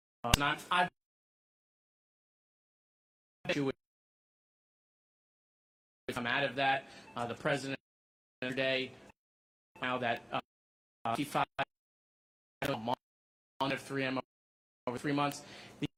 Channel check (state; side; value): identical; both; correlation 1.00